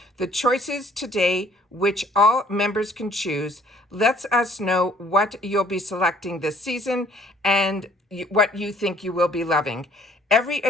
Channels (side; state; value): both; normal; correlation 0.59